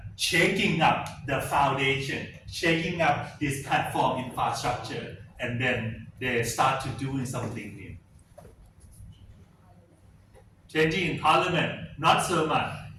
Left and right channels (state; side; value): identical; both; correlation 1.00